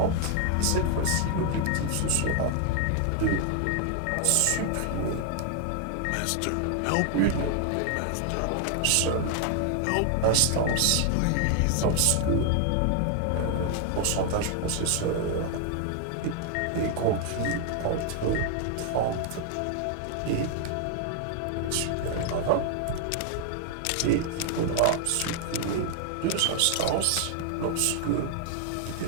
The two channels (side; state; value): both; different; correlation 0.00